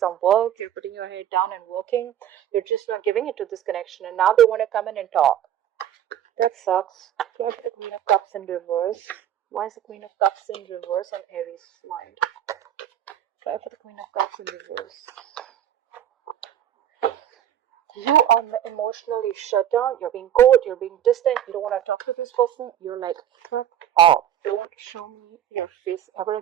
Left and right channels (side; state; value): left; quieter; 10.7 dB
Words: work, you're putting your head down and working, you're just not giving it to this connection, and now they want to come in and talk. That sucks. Here's the Queen of Cups in reverse. Why is the Queen of Cups in reverse on Aries' mind? Try for the Queen of Cups in reverse. You are emotionally shut down, you're being cold, you're being distant, you don't want to talk to this person, you're like, fuck off. Don't show me your face ever